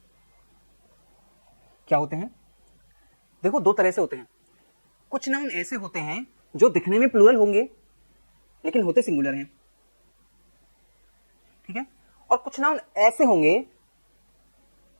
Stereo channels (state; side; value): inverted; both; correlation -1.00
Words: क्या होते हैं। देखो दो तरह से होते हैं, कुछ नाउन ऐसे होते हैं जो दिखने में प्लूरल होंगे लेकिन होते सिंगुलर हैं। ठीक है, और कुछ नाउन ऐसे होंगे